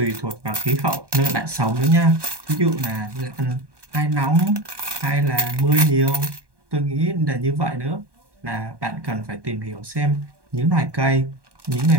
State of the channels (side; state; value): left; late; 1.1 ms